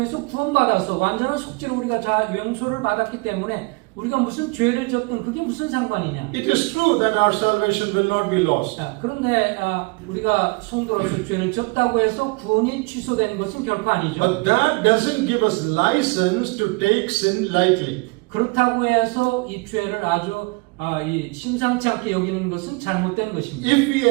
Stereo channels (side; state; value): left; quieter; 27.8 dB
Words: 구원받아서 완전한 속죄로 우리가 용서를 받았기 때문에 우리가 무슨 죄를 졌든 그게 무슨 상관이냐. It is true that our salvation will not be lost. 그런데 우리가 성도로서 죄를 졌다고 해서 구원이 취소되는 것은 결코 아니죠. But that doesn't give us license to take sin lightly. 그렇다고 해서 이 죄를 아주 이 심상치 않게 여기는 것은 잘못된 것입니다. If we